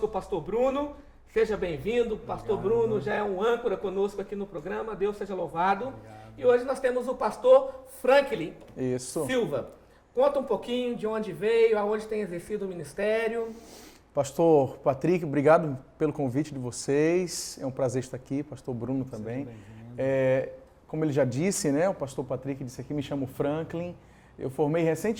o pastor Bruno. Seja bem-vindo. Pastor Bruno já é um âncora conosco aqui no programa. Deus seja louvado. Obrigado. E hoje nós temos o pastor Franklin Silva. Conta um pouquinho de onde veio, aonde tem exercido o ministério. Pastor Patrick, obrigado pelo convite de vocês. É um prazer estar aqui. Pastor Bruno também. Como ele já disse, né? O pastor Patrick disse aqui, me chamo Franklin. Eu formei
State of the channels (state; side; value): identical; both; correlation 1.00